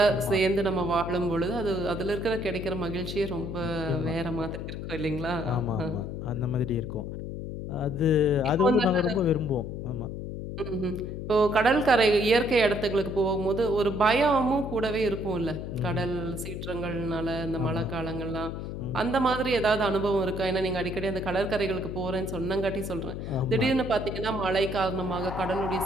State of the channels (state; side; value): noise; left; hum, 6 dB below the sound